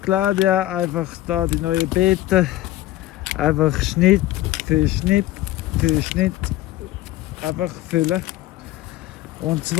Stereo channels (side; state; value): right; quieter; 15.5 dB